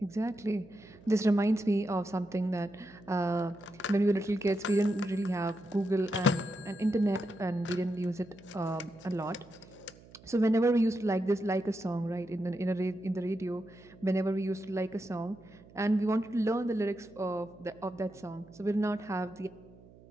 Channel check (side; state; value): right; noise; hum, 23 dB below the sound